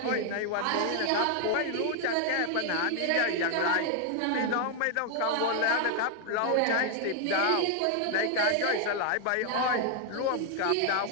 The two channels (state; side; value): different; both; correlation 0.00